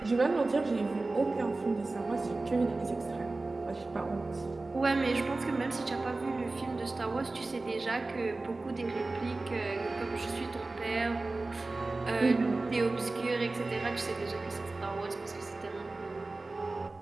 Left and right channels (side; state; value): left; quieter; 3.3 dB